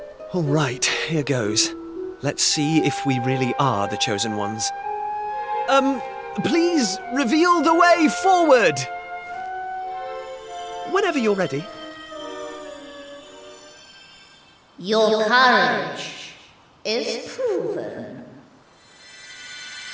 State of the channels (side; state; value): both; identical; correlation 1.00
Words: All right, here goes. Let's see if we really are the chosen ones. Please reveal the way forward! Whenever you're ready. Your courage is proven.